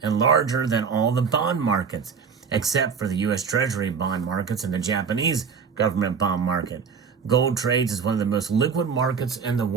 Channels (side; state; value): left; quieter; 6.1 dB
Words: and larger than all the bond markets, except for the U.S. Treasury bond markets and the Japanese government bond market. Gold trades as one of the most liquid markets in the